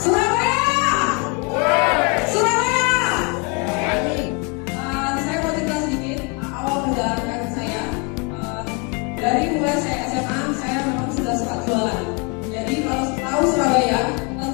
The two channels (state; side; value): quieter; right; 32.8 dB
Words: Surabaya. Saya mau cerita sedikit awal perjalanan karir saya. Dari mulai saya SMA, saya memang sudah suka jualan. Jadi kalau tahu Surabaya,